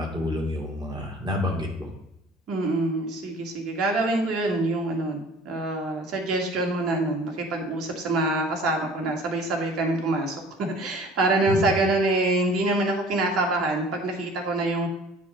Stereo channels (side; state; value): both; normal; correlation 0.48